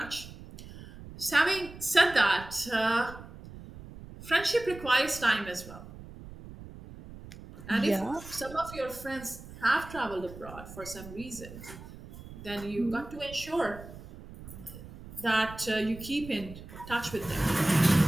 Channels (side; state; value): right; noise; rumble, 15 dB below the sound